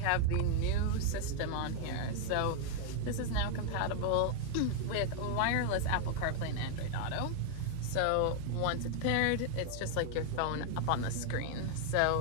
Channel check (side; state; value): both; different; correlation 0.00